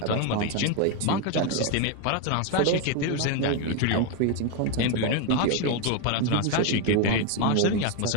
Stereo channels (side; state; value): both; different; correlation 0.02